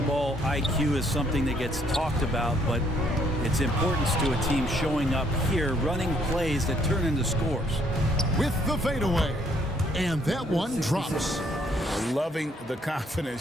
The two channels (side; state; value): both; normal; correlation 0.67